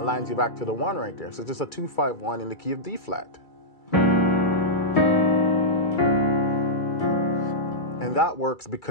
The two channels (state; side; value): late; right; 2.3 ms